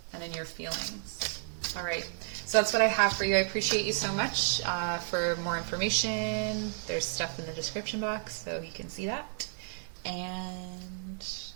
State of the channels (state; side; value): silent; left; 56 dB below the other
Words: and in your feelings. All right, so that's what I have for you. I appreciate you so much. For more information, there's stuff in the description box, so you can see that. And